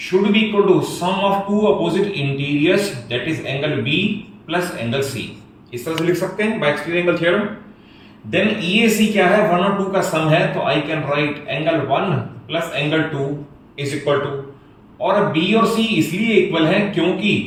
should be equal to sum of two opposite interiors, that is angle B plus angle C। इस तरह से लिख सकते हैं by exterior angle theorem। then EAC क्या है, 1 और 2 का सम है, तो I can write angle 1 plus angle 2 is equal to, और B और C इसलिए इक्वल है क्योंकि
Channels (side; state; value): both; identical; correlation 1.00